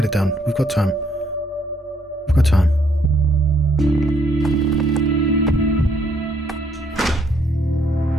it done. We've got time. We've got time.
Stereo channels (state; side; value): normal; both; correlation 0.69